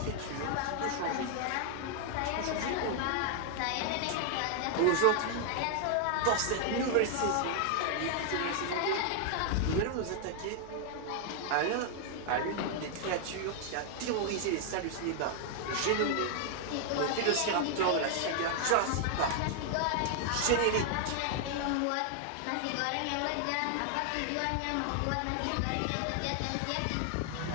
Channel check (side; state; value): both; different; correlation 0.00